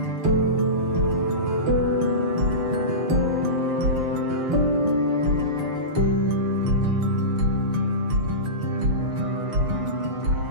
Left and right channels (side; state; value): left; late; 6.6 ms